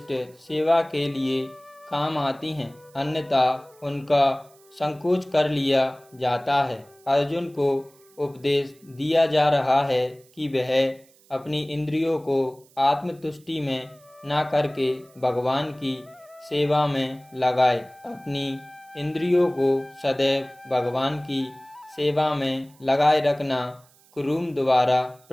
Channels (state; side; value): noise; right; hiss, 29 dB below the sound